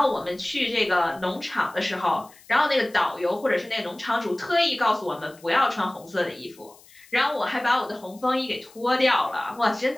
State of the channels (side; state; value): left; noise; hiss, 25 dB below the sound